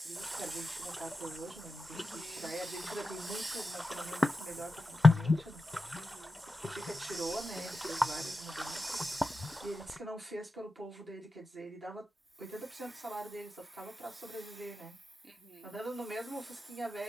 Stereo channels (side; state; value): both; normal; correlation 0.91